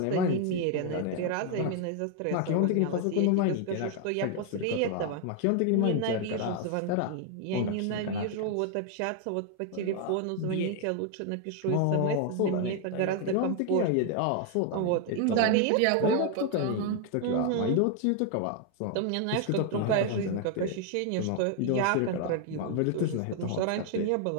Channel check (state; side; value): different; both; correlation 0.00